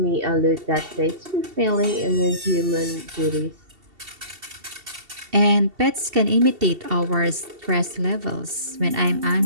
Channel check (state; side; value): late; left; 2.7 ms